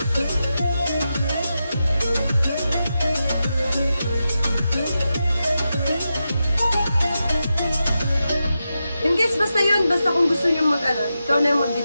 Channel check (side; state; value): both; inverted; correlation -0.89